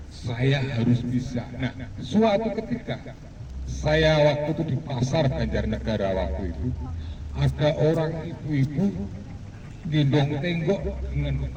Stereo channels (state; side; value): identical; both; correlation 1.00